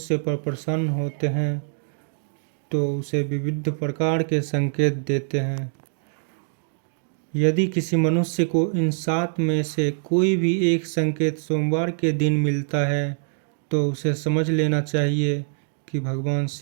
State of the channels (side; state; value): left; silent; digital silence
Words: पर प्रसन्न होते हैं तो उसे विविध प्रकार के संकेत देते हैं। यदि किसी मनुष्य को इन 7 में से कोई भी एक संकेत सोमवार के दिन मिलता है तो उसे समझ लेना चाहिए कि भगवान